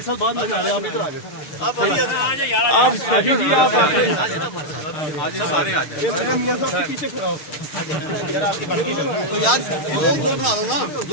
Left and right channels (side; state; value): right; late; 6.6 ms